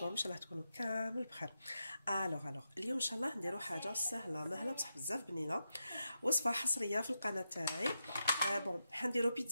Inch'Allah تكونوا كامل بخير. alors اليوم ان شاء الله نديرو حاجه سهله مهله بصح بزاف بنينه. وصفه حصريه في القناه تاعي. بون حنديرو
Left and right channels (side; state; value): both; inverted; correlation -0.87